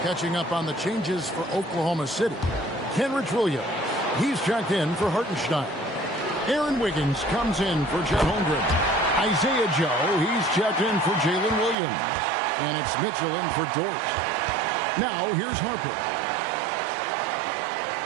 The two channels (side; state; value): left; drops out; at 11.8 s